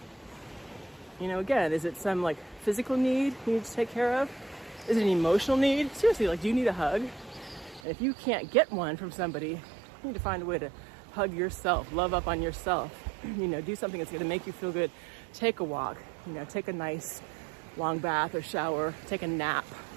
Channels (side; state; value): left; drops out; at 7.8 s